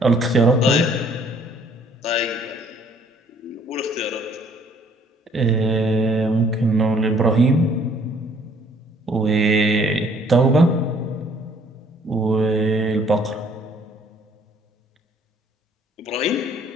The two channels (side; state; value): both; normal; correlation 0.61